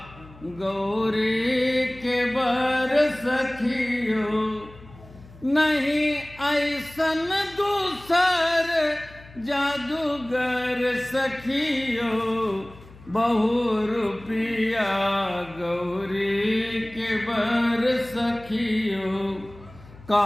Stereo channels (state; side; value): noise; left; hum, 21 dB below the sound